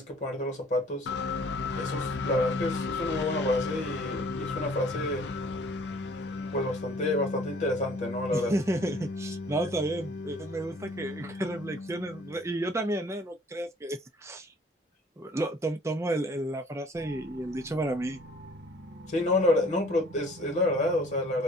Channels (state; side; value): normal; both; correlation 0.55